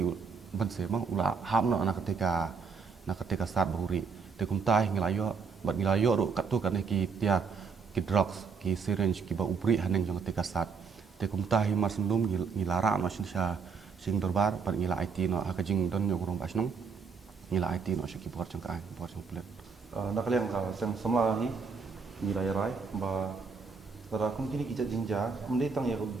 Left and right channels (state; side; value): quieter; left; 5.3 dB